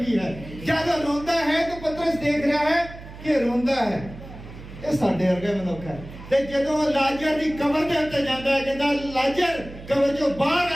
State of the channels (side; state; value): right; noise; hum, 15 dB below the sound